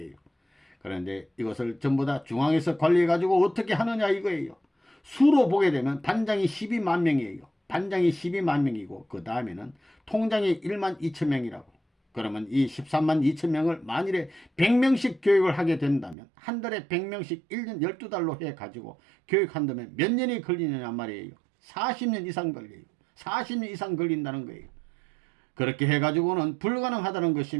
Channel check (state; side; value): drops out; left; at 16.2 s